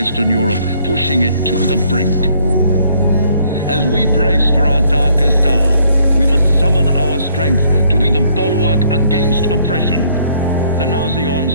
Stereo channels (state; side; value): inverted; both; correlation -0.65